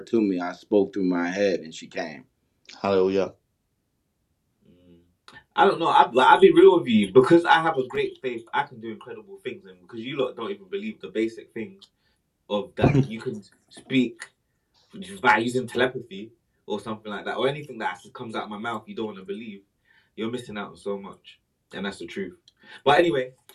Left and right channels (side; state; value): both; identical; correlation 1.00